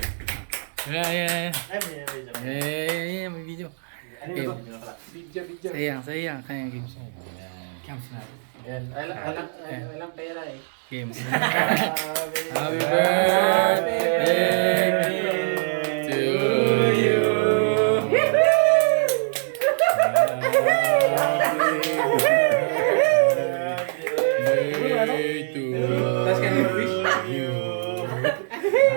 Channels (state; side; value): silent; left; digital silence